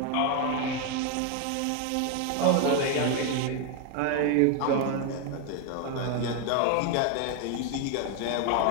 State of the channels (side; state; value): both; different; correlation 0.01